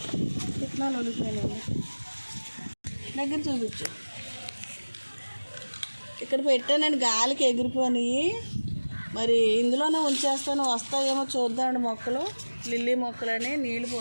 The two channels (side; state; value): both; inverted; correlation -1.00